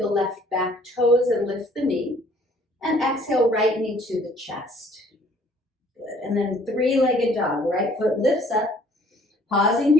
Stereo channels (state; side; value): normal; both; correlation 0.59